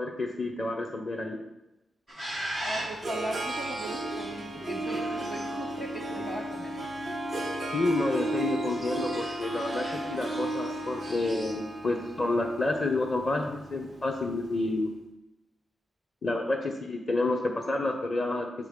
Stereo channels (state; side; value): normal; both; correlation 0.85